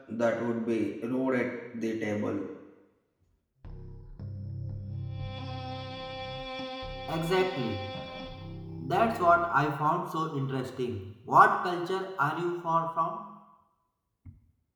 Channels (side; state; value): both; identical; correlation 1.00